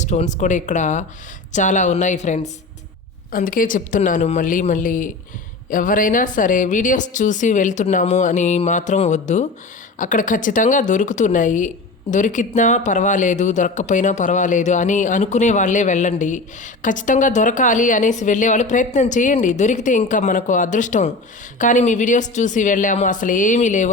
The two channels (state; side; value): quieter; right; 3.3 dB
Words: స్టోన్స్ కూడా ఇక్కడ చాలా ఉన్నాయి ఫ్రెండ్స్. అందుకే చెప్తున్నాను మళ్ళీ ఎవరైనా సరే వీడియోస్ చూసి వెళ్తున్నాము అని మాత్రం వద్దు. అక్కడ ఖచ్చితంగా దొరుకుతున్నాయి. దొరికినా పర్వాలేదు, దొరక్కపోయినా పర్వాలేదు అని అనుకునే వాళ్ళే వెళ్ళండి. ఖచ్చితంగా దొరకాలి అనేసి వెళ్ళేవాళ్ళు ప్రయత్నం చేయండి, దొరికితే ఇంకా మనకు అదృష్టం. కానీ మీ వీడియోస్ చూసి వెళ్ళాము అసలు ఏమీ లేవు,